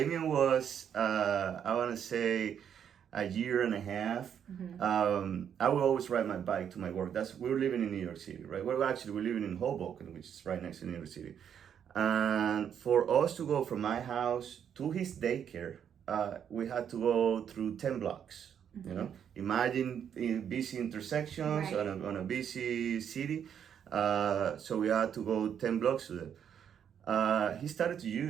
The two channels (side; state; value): left; quieter; 8.5 dB